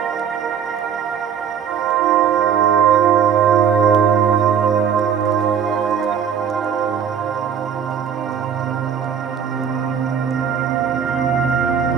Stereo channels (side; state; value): left; quieter; 7.9 dB